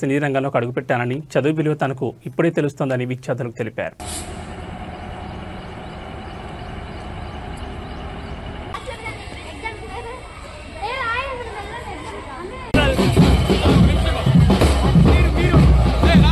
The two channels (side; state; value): both; identical; correlation 1.00